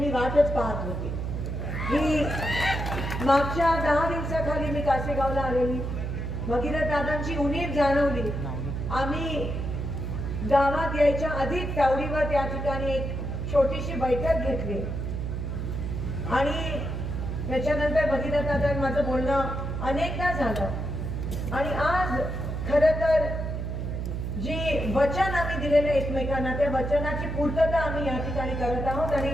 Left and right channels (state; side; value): noise; right; hum, 3 dB below the sound